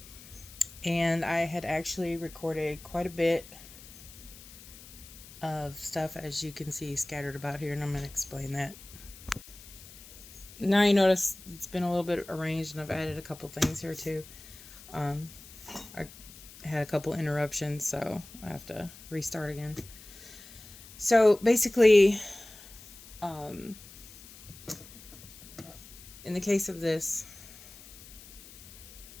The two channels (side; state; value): left; noise; hiss, 18 dB below the sound